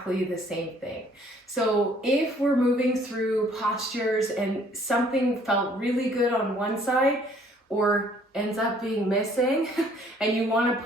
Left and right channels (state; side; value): normal; both; correlation 0.60